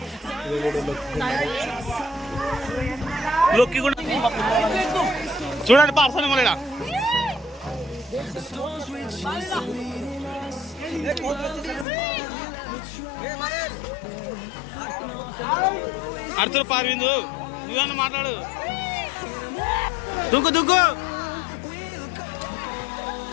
చూడండి పార్సల్ మళ్ళీ అర్చులు పార్విందు, నువ్వన్నా మాట్లాడు. దుక్కు దుక్కు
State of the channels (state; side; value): drops out; right; at 11.9 s